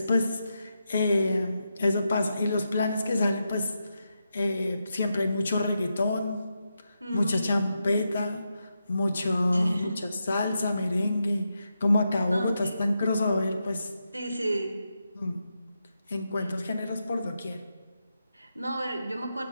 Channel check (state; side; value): inverted; both; correlation -0.86